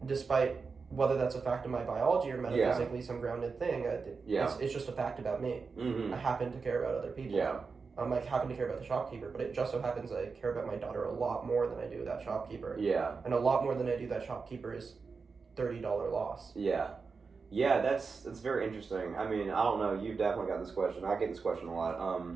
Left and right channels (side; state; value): left; quieter; 4.9 dB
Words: despite whether that's a fact of my biology or metaphysically some grounded thing. It's just a fact about me. I happen to care about other people. Yeah. I happen to care about the shopkeeper, but it just so happens I care about my daughter a lot more than I do that shopkeeper. Yeah. And a lot more than I do that shopkeeper is $30 loss. Yeah. Yeah, that's very interesting. I mean, I don't know, you've definitely got this question. I get this question a